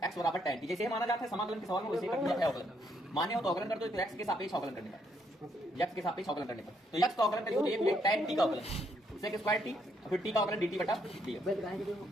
एक्स बराबर tan t, जैसे ही माना जाता है समाकलन के सवाल में वैसे ही कर दिया है अवकलन। माने हो तो अवकलन कर दो, तो एक्स के सापेक्ष अवकलन करने का, x के सापेक्ष अवकलन करने पर, तो x का अवकलन करिए तो ये tan t का अवकलन sec स्क्वायर t, फिर t का अवकलन dt बटा dx।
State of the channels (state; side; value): normal; both; correlation 0.73